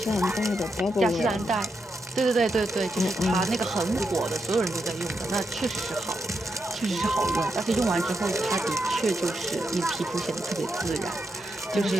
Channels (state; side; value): normal; both; correlation 0.84